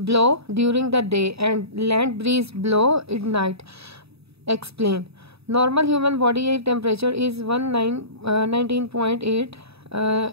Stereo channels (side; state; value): left; late; 0.78 ms